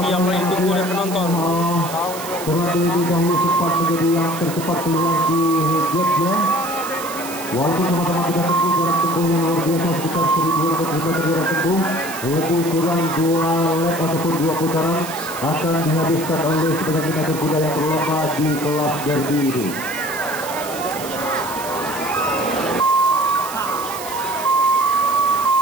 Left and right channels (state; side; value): noise; right; hiss, 11 dB below the sound